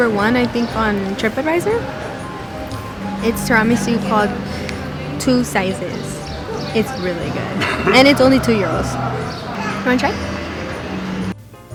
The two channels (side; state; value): both; identical; correlation 1.00